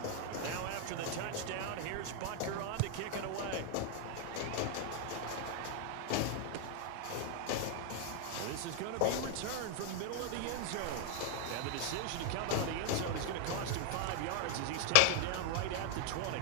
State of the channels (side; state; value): both; different; correlation 0.00